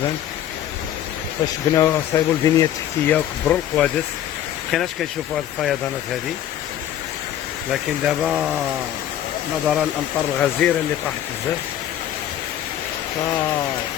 فاش بناو صايبوا البنية التحتية وكبروا القوادس مكناش كنشوفوا هاد الفيضانات هادي. لكن دابا نظرا للأمطار الغزيرة اللي طاحت بزاف،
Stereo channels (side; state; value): right; quieter; 11.4 dB